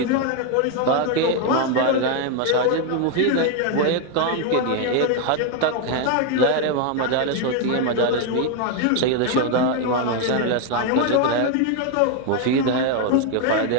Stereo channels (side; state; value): both; different; correlation 0.01